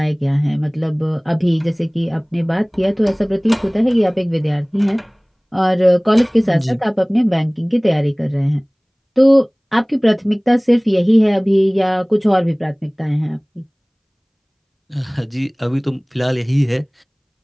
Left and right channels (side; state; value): both; identical; correlation 1.00